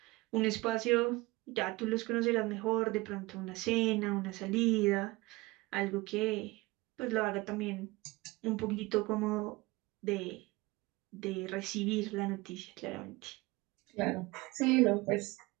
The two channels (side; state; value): left; quieter; 22.1 dB